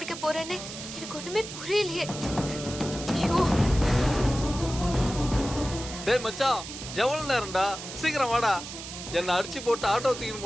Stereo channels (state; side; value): noise; right; hiss, 10 dB below the sound